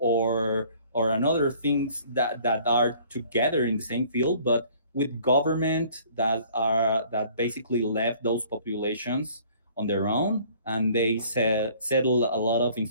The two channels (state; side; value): inverted; both; correlation -0.55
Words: another things that are together in the same field, but with government that basically left those populations on their own, and they settle a lot of